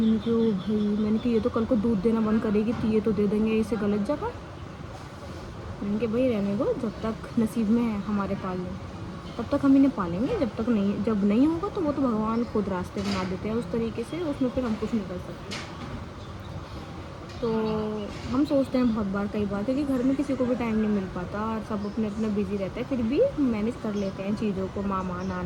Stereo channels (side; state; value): both; identical; correlation 1.00